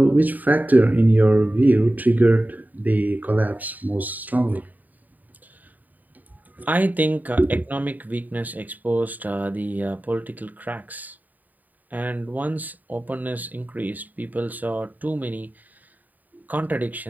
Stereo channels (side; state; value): left; late; 0.083 ms